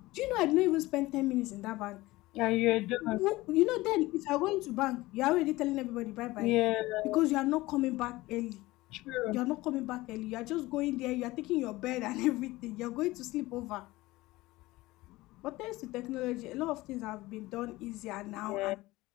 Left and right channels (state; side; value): quieter; right; 19.3 dB